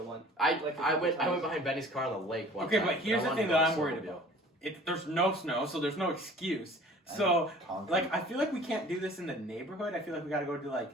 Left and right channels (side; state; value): both; normal; correlation 0.48